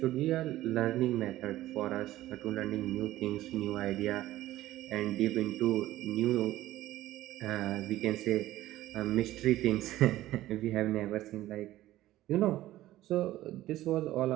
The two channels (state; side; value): quieter; left; 15.2 dB